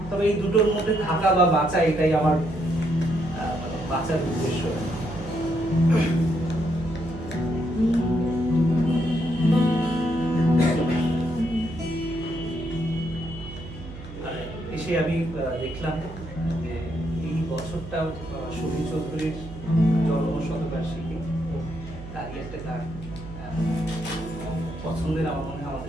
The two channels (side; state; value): right; noise; hum, 13 dB below the sound